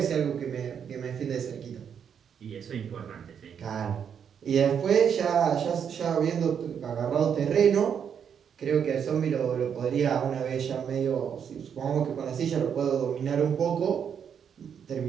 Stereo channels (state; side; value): quieter; left; 7.8 dB